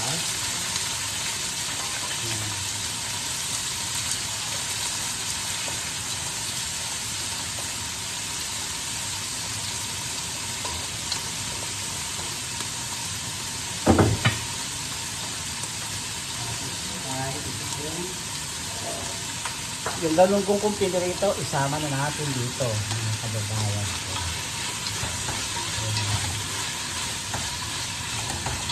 Yung ganun kong kumpili rito, isama na natin dito, mga kababayan ko.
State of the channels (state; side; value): identical; both; correlation 1.00